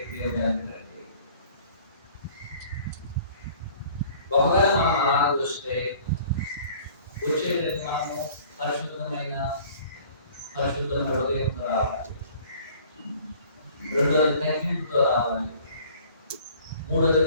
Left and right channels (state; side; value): inverted; both; correlation -0.51